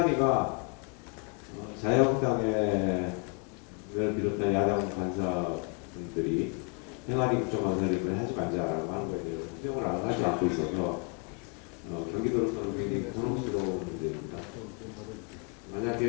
자유한국당을 비롯한 야당 간사분들이 행안위 국정감사를 이번에 하지 말자라고 하는 거에 대해서 수용을 하지 않고 있어서 경기도로서는 굉장히 곤혹스러운 문제입니다.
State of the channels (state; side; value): quieter; right; 36.1 dB